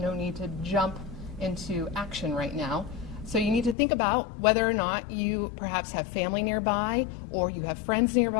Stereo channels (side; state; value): right; drops out; at 3.8 s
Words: no need to jump into action right now. So you need to think about whether or not you perhaps have family nearby, or you have friends